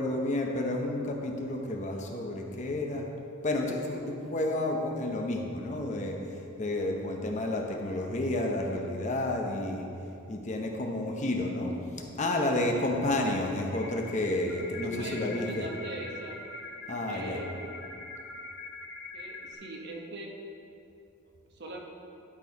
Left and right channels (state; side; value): normal; both; correlation 0.38